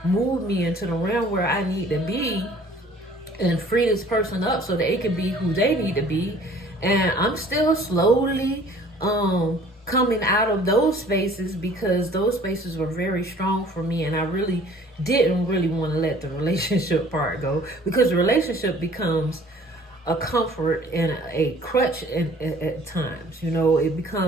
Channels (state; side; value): normal; both; correlation 0.52